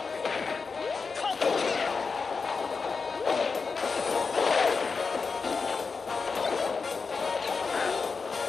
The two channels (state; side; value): quieter; right; 4.8 dB